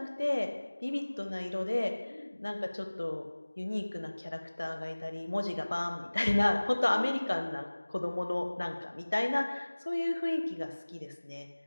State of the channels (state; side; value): inverted; both; correlation -1.00